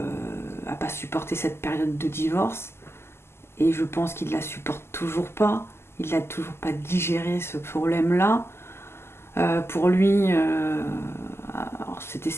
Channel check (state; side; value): late; right; 0.12 ms